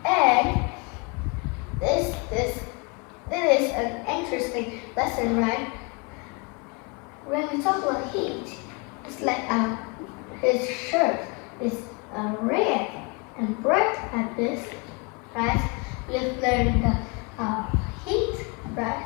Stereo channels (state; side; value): quieter; right; 30.5 dB